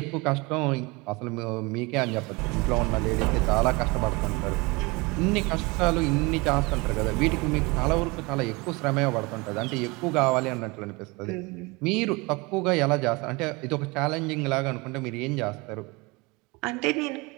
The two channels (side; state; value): left; quieter; 25.6 dB